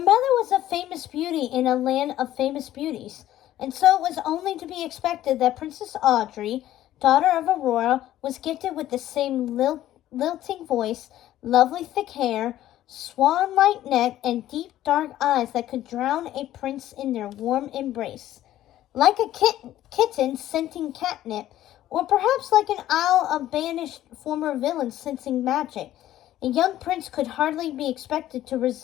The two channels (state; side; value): quieter; right; 13.4 dB